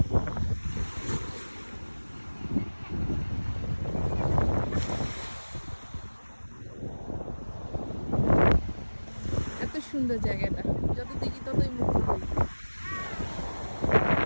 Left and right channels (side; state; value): both; inverted; correlation -1.00